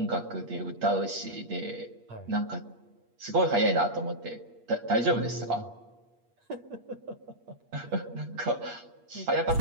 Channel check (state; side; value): late; left; 8.5 ms